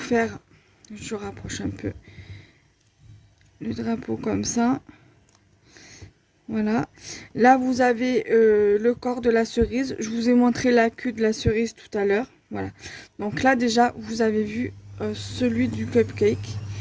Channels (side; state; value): both; identical; correlation 1.00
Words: je rapproche un peu, le drapeau comme ça. Voilà. Là vous avez le corps de la cerise. Je vous ai montré la queue de la cerise tout à l'heure. Voilà. Donc là déjà vous avez vu celui du cupcake.